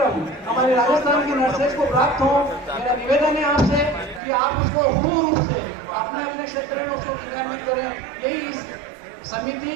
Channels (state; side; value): drops out; left; at 4.2 s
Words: हमारे राजस्थान की नर्सेज को प्राप्त हो, मेरा निवेदन है आपसे कि आप उसको पूर्ण रूप से अपने अपने क्षेत्र में उसको क्रियान्वित करें। यही इस समिति